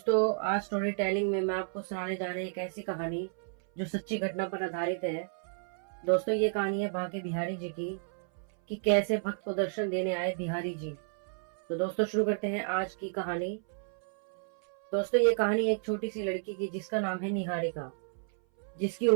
आज स्टोरी टेलिंग में मैं आपको सुनाने जा रही एक ऐसी कहानी जो सच्ची घटना पर आधारित है। दोस्तों ये कहानी है बांके बिहारी जी की कि कैसे भक्त को दर्शन देने आए बिहारी जी। तो दोस्तों शुरू करते हैं आज की कहानी। दोस्तों ये कहानी एक छोटी सी लड़की की जिसका नाम है निहारिका, जिसकी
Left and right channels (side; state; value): left; silent; 57 dB below the other